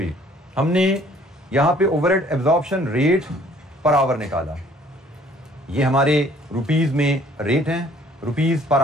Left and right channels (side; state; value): both; normal; correlation 0.58